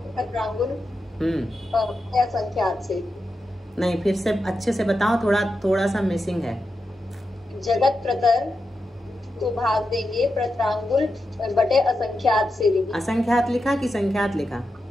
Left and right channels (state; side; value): normal; both; correlation 0.88